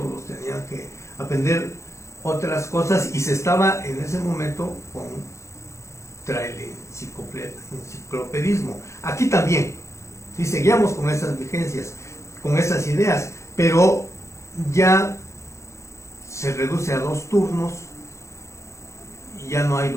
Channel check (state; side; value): late; right; 0.14 ms